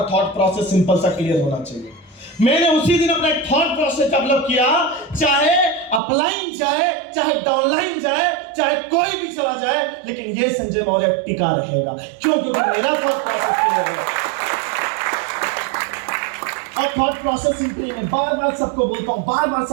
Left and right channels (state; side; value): drops out; left; at 6.0 s